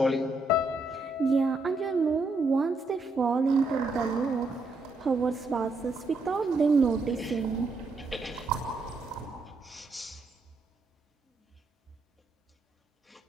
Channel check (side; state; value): left; quieter; 3.1 dB